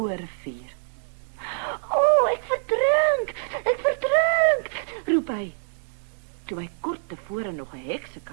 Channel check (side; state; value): left; silent; 60 dB below the other